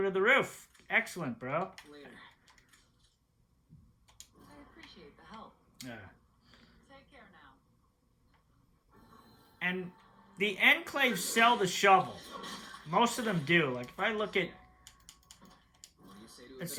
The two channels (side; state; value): both; identical; correlation 1.00